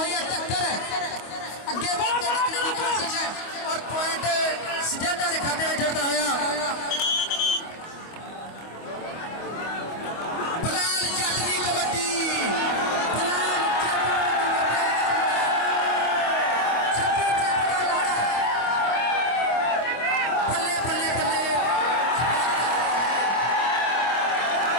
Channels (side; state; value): right; late; 25 ms